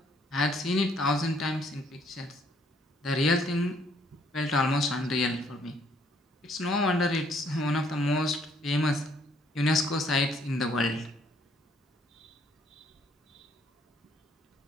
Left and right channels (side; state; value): both; normal; correlation 0.65